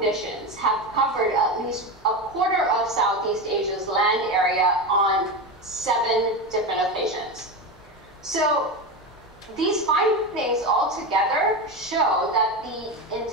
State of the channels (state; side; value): normal; both; correlation 0.19